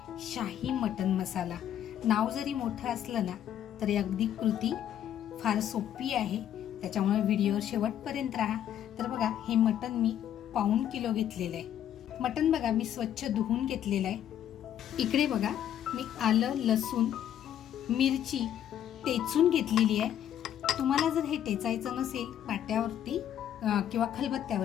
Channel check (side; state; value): right; quieter; 10.5 dB